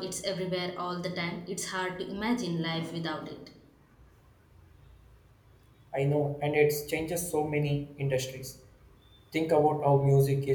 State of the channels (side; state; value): both; identical; correlation 1.00